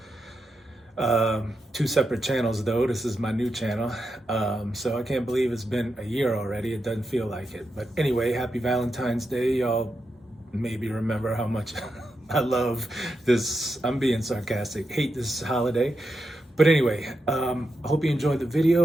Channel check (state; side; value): normal; both; correlation 0.86